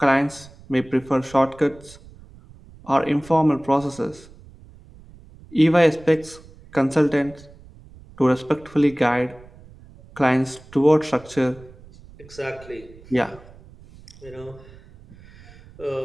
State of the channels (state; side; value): noise; right; rumble, 22 dB below the sound